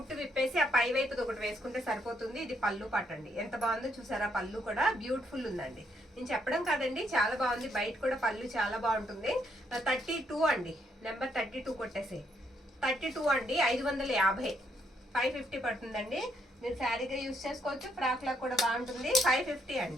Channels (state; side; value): normal; both; correlation 0.74